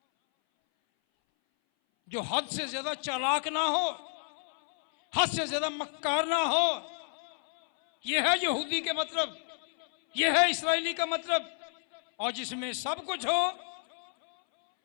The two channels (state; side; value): silent; right; 58 dB below the other